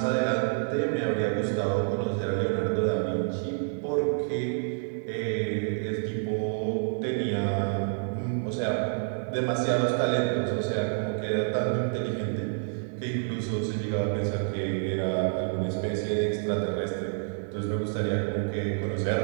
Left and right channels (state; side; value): silent; left; digital silence